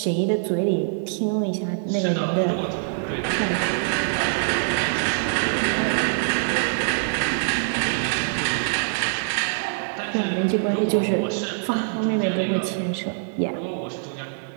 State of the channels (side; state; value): left; silent; digital silence